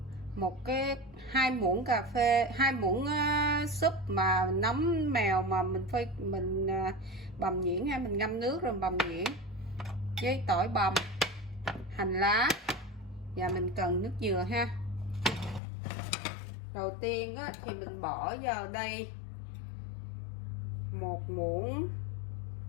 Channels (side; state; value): right; drops out; at 15.6 s